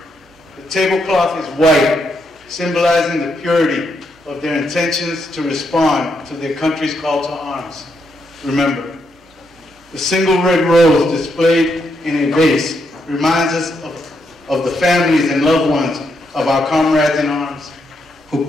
the tablecloth is white, symbolizing the purity of their intentions to respond to their country's call to arms. Remember, the single red rose displayed in a vase reminds us of the families and loved ones of our comrades in arms who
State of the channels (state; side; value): normal; both; correlation 0.79